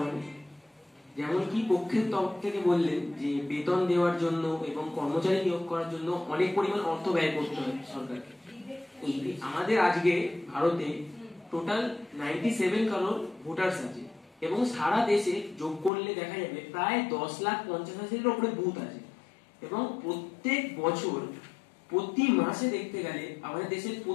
যেমন কি পক্ষের তরফ থেকে বললেন যে বেতন দেওয়ার জন্য এবং কর্মচারী নিয়োগ করার জন্য অনেক পরিমাণ অর্থ ব্যয় করতে হয় সরকারকে। আমাদের আজকে ভারতে টোটাল 97 কারোর ভোটার্স আছে এবং সারা দেশে যোগ করলে দেখা যাবে প্রায় 10,50,000-এর উপরে বুথ আছে এবং প্রত্যেক বছর প্রতি মাসে দেখতে গেলে আমাদের দেশের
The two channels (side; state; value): right; drops out; at 15.9 s